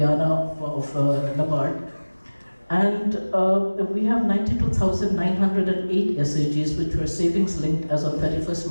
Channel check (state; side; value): inverted; both; correlation -1.00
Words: of Nabard, and we have 92,908 SAGs which were savings linked as on 31st